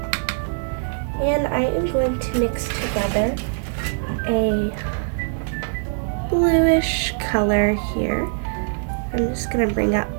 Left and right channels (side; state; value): left; silent; 64 dB below the other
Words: And I am going to mix together a bluish color here. I'm just going to bring up